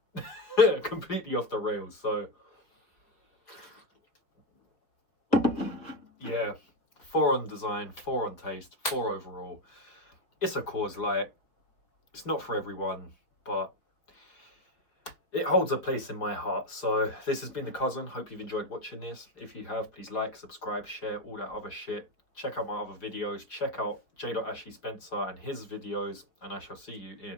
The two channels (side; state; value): right; late; 4.7 ms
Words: completely off the rails. So yeah, 4 on design, 4 on taste, 4 overall. It's a Coors Light. It's not for everyone, but it holds a place in my heart. So this has been The Cousin. Hope you've enjoyed watching this. If you have, please like, subscribe, share, all that other shit. Check out my other videos. Check out J. Ashley Spencer and his videos. And I shall see you